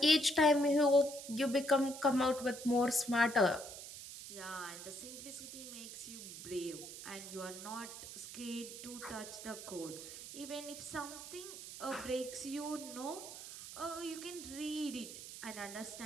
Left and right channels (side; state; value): right; noise; hiss, 11 dB below the sound